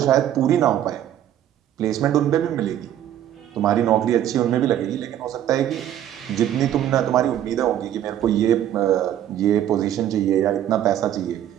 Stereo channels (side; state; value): left; quieter; 11.2 dB